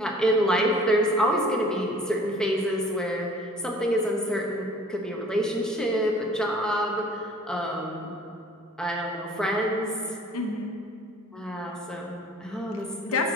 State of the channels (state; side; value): normal; both; correlation 0.50